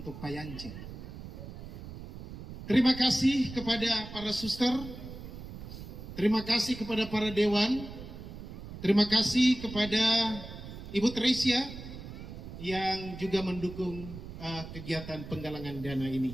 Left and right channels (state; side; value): noise; right; rumble, 11 dB below the sound